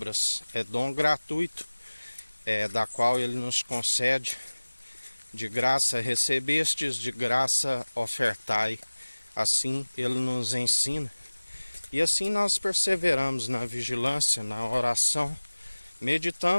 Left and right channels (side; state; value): both; inverted; correlation -1.00